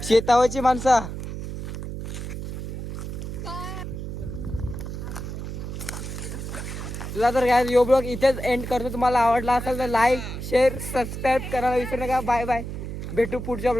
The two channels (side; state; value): right; noise; hum, 7 dB below the sound